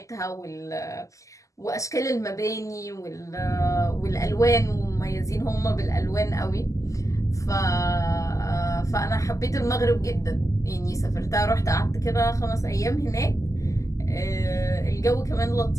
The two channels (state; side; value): late; right; 0.16 ms